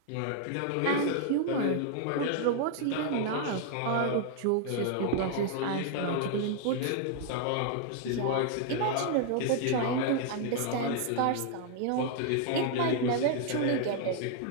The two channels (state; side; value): different; both; correlation 0.00